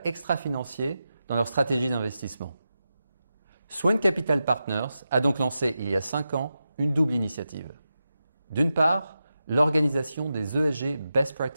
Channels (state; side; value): inverted; both; correlation -0.90